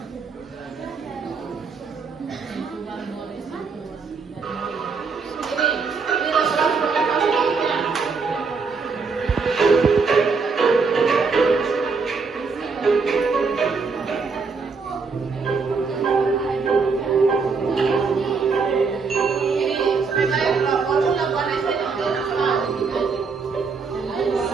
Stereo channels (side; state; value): left; quieter; 4.9 dB